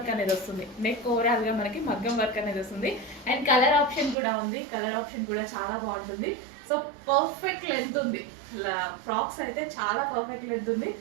అనేది వస్తుంది. నెక్ ఓవరాల్ గా మనకి మగ్గం వర్క్ అనేది వస్తుంది. అండ్ కలర్ ఆప్షన్ కూడా ఉంది. కలర్ ఆప్షన్ కూడా చాలా బాగుంటుంది. సో పర్ఫెక్ట్ లెంత్ ఉంది. ఫ్రాక్స్ అయితే చాలా పర్ఫెక్ట్ లెంత్ ఉంది.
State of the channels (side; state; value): left; drops out; at 4.2 s